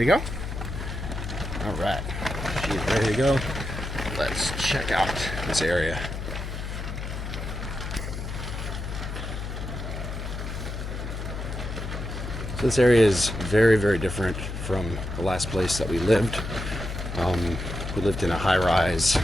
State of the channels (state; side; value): noise; left; hum, 6 dB below the sound